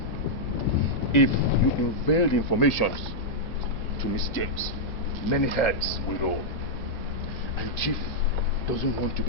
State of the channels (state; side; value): normal; both; correlation -0.07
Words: if you unveil the information to Miss James, many heads will roll. And Chief doesn't want to